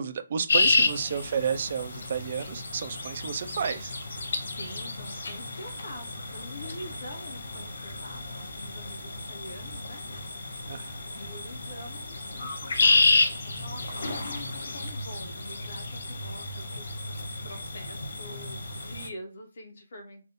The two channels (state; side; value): inverted; both; correlation -0.83